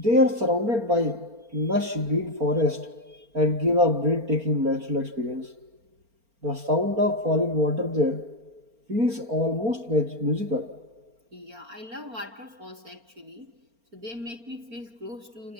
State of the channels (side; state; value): left; late; 4.4 ms